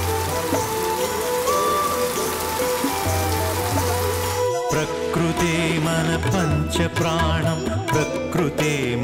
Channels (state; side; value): identical; both; correlation 1.00